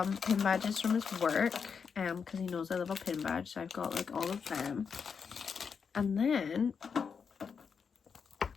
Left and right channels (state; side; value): quieter; right; 6.2 dB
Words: pin badges from his work, because he knows I love a pin badge, so I've got like all of them. And then